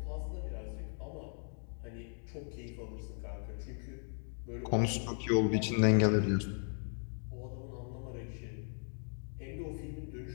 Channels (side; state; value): right; silent; 53 dB below the other